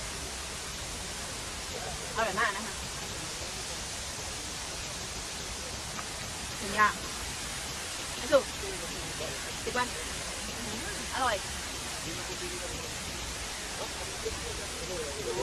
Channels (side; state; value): both; identical; correlation 1.00